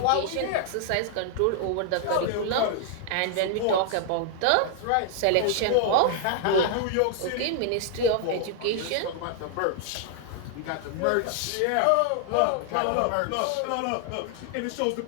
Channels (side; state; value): both; different; correlation 0.00